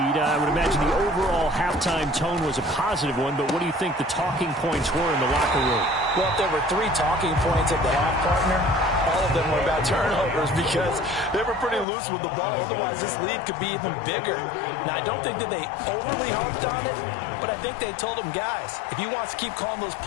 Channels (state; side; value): drops out; right; at 11.9 s